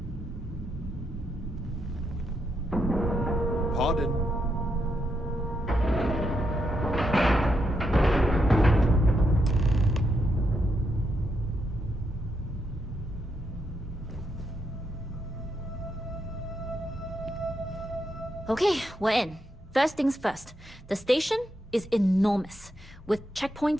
Pardon. Okay, we're in. First things first. The station is enormous, with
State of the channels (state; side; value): normal; both; correlation 0.81